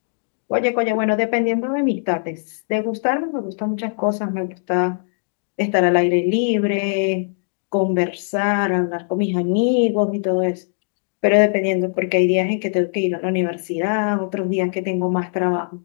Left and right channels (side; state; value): right; silent; digital silence